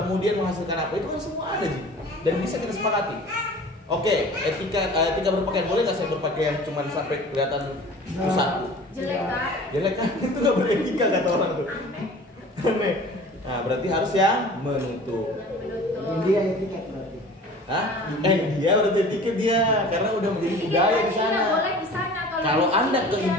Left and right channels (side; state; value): both; normal; correlation 0.43